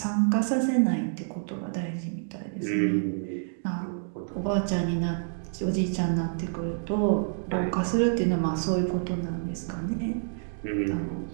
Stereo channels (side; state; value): left; silent; digital silence